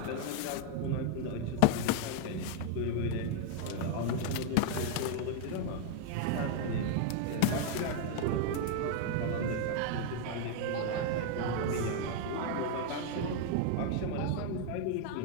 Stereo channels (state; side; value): different; both; correlation 0.00